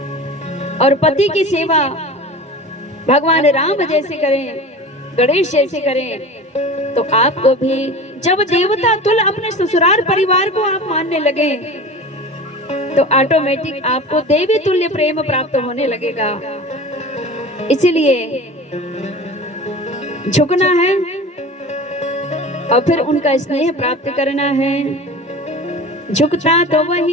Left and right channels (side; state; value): both; normal; correlation 0.35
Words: और पति की सेवा भगवान राम जैसे करें, गणेश जैसे करें, तो आपको भी जब देवता तुल्य अपने ससुराल परिवार को आप मानने लगे, तो ऑटोमेटिक आपको देवी तुल्य प्रेम प्राप्त होने लगेगा। इसलिए झुकना है और फिर उनका स्नेह प्राप्त करना है। झुकता तो